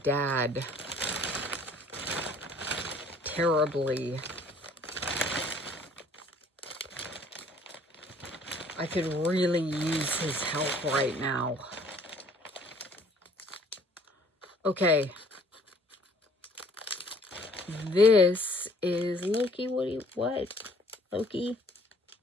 terribly. I could really use his help right now. Okay. This is Loki. What? Loki,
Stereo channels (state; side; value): normal; both; correlation 0.57